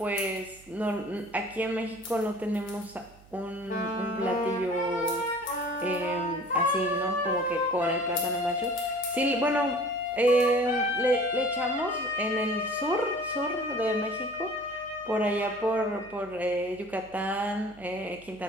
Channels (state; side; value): noise; right; hum, 24 dB below the sound